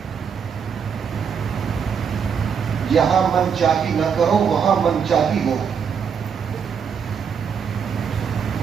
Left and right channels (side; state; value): left; quieter; 6.9 dB